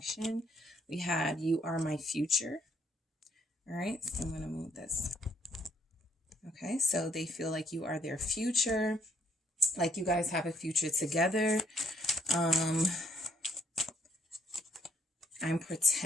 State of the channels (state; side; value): normal; both; correlation 0.68